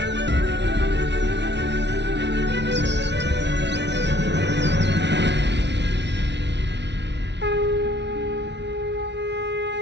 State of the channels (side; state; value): left; late; 0.51 ms